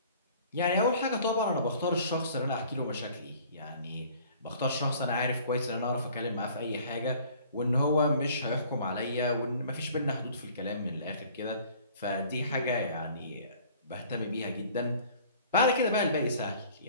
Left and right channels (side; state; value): both; inverted; correlation -0.52